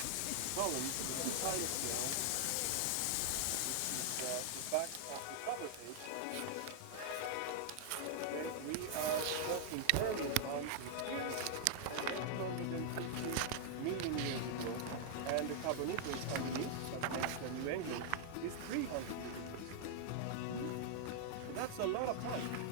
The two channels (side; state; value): both; different; correlation -0.01